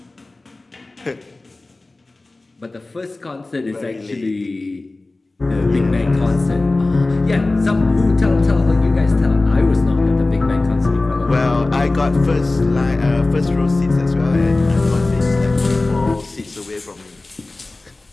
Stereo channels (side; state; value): right; quieter; 3.1 dB